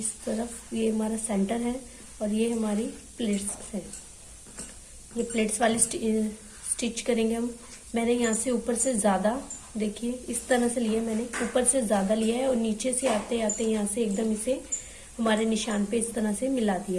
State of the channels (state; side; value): identical; both; correlation 1.00